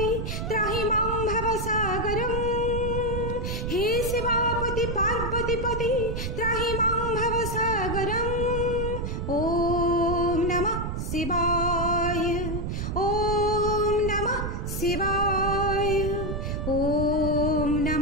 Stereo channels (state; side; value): noise; right; rumble, 3 dB below the sound